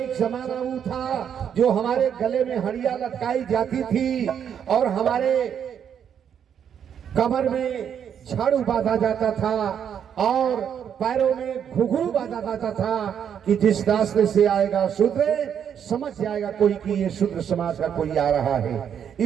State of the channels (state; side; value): quieter; left; 8.4 dB